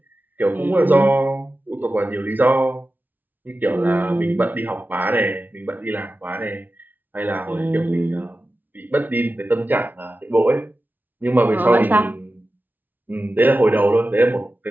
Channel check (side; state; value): left; late; 0.086 ms